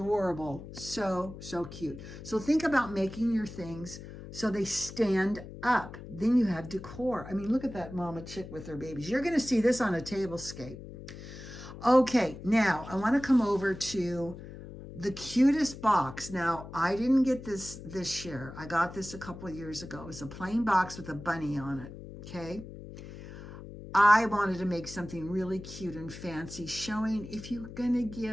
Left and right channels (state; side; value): noise; left; hum, 13 dB below the sound